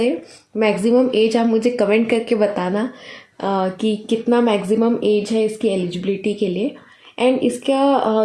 मैक्सिमम एज आप मुझे कमेंट करके बताना कि कितना मैक्सिमम एज है इसकी एलिजिबिलिटी के लिए। एंड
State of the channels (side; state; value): both; identical; correlation 1.00